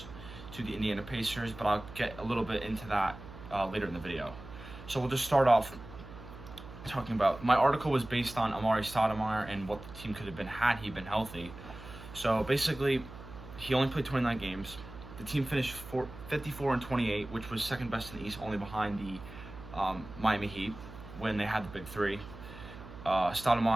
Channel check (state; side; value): noise; right; hum, 14 dB below the sound